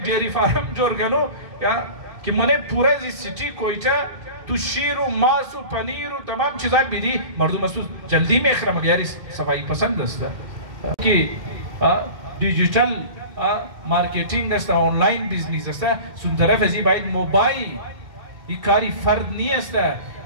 ڈیری فارم جور کنو یا که منه پورا زی سیٹی کویتا تو شیر و ماس و پنیر و تمام چیزا بیدی مردم است جلدی میخره. مگر یاری صفایی پسند است که دیجیتال مارکتینگ است، آنلاین بیزنس است. سون طرف ازی باید موبایل این کاری فرد نیست.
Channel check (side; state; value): left; late; 2.1 ms